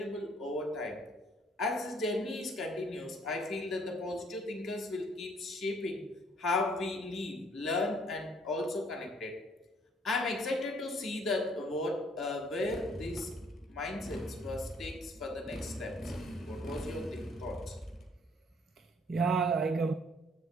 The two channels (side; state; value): both; normal; correlation 0.62